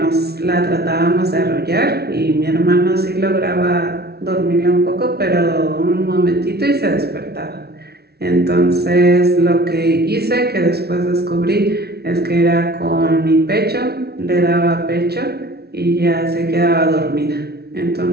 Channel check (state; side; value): late; left; 0.46 ms